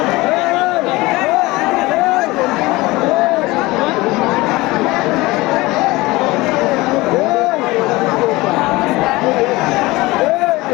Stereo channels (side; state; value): right; quieter; 20.9 dB